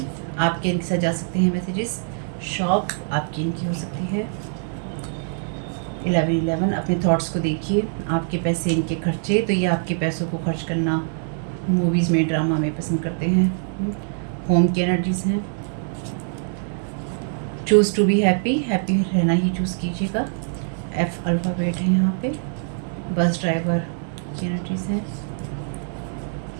आपके इनके साथ जा सकते हैं मैसेजेस। शॉप आपकी इनकी हो सकती है। 11 अपने थॉट्स को देखिए। आपके पैसे इनके खर्चे, तो ये आपके पैसों को खर्च करना मूवीज़ में, ड्रामा में पसंद करते हैं। होम की एनर्जीज हैं। Choose to be happy, happy रहना ही चूज़ कीजिएगा। एफ अल्फ़ाबेट है यहाँ पे। बस ड्राइवर की एनर्जीज हैं।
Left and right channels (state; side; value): silent; left; digital silence